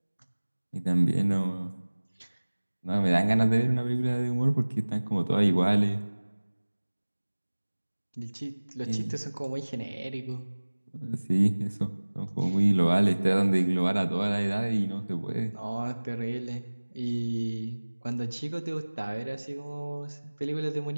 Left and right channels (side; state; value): both; inverted; correlation -1.00